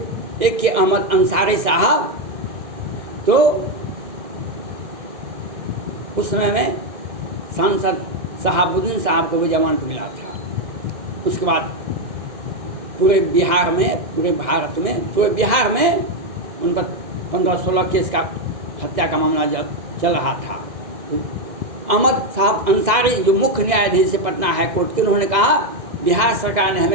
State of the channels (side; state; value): left; late; 2.0 ms